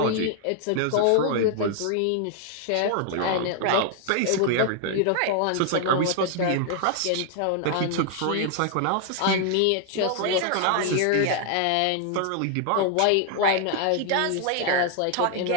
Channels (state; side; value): different; both; correlation 0.00